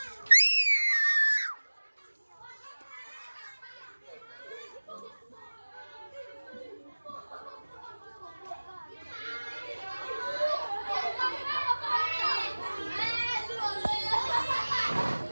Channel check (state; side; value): inverted; both; correlation -1.00